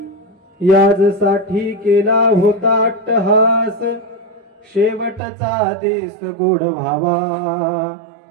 याजसाठी केला होता अट्टहास, शेवटचा देश गोड व्हावा,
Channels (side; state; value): left; drops out; at 5.2 s